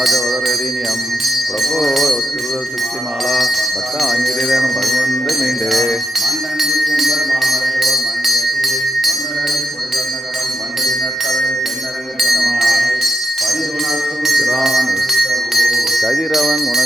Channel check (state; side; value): normal; both; correlation 0.88